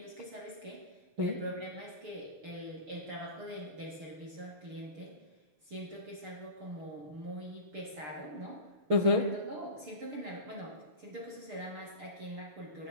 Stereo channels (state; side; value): late; left; 6.7 ms